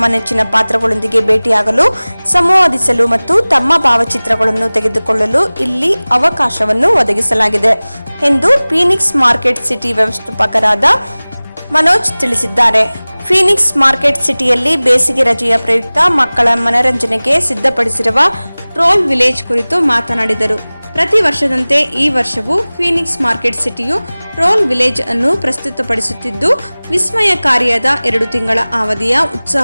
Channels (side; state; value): both; inverted; correlation -0.99